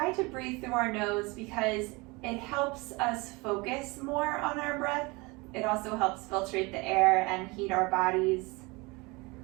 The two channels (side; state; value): left; quieter; 25.6 dB